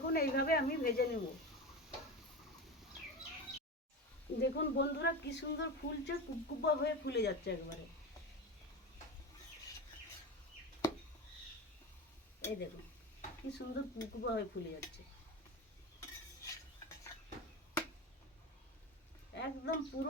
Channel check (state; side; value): normal; both; correlation 0.24